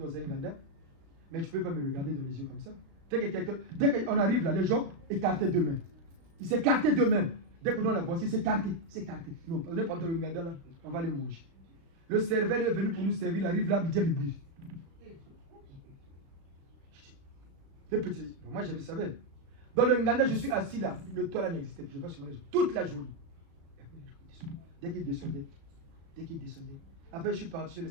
un Ganda. Mais tu ne peux pas me regarder dans les yeux comme ça. Dès qu'on arrive là, les gens écartaient d'eux-mêmes. Ils s'écartaient d'eux-mêmes. Dès que nous la voici, c'est écarté. Non, on est pas dans le Nganda là, on va les manger. Le serveur est venu pour nous servir, il arrive là, il dit, les petits, moi je le savais. Dans le Nganda, je suis assis là, le toit là n'existait plus, je vais sur les gens toute la journée. Dès qu'il descendait, après je suis parti chez le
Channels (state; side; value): late; left; 36 ms